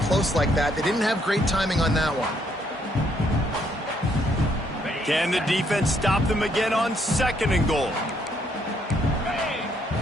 close like that. They didn't have great timing on that one. Can the defense stop them again on 2nd and goal?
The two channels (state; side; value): normal; both; correlation 0.71